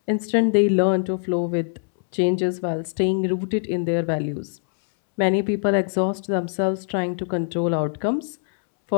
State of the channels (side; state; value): right; silent; 64 dB below the other